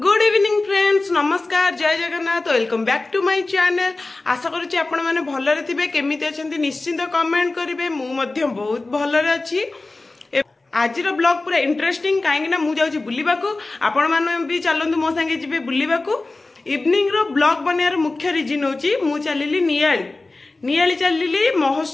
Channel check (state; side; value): quieter; right; 3.2 dB